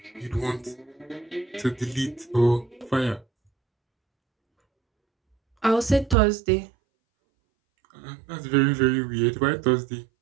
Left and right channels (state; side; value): drops out; left; at 6.2 s